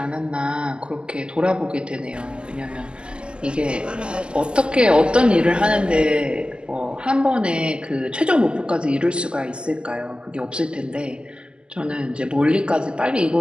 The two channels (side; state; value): left; late; 0.049 ms